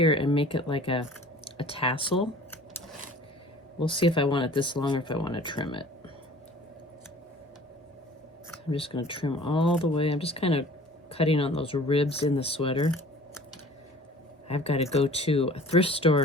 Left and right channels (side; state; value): both; normal; correlation 0.47